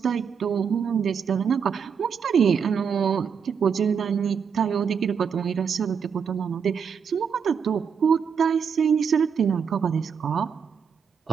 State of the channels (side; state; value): left; quieter; 6.8 dB